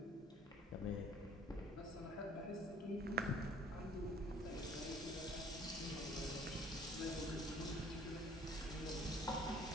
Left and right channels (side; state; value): both; normal; correlation 0.55